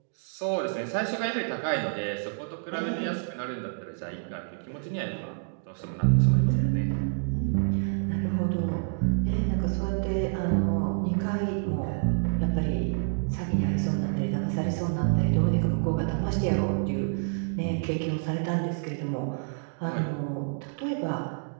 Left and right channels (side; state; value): left; silent; digital silence